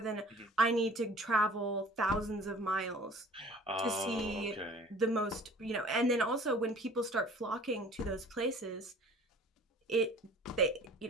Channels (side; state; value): both; normal; correlation 0.47